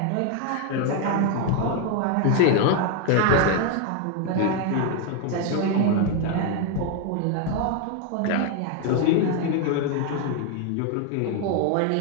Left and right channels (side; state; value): both; different; correlation 0.01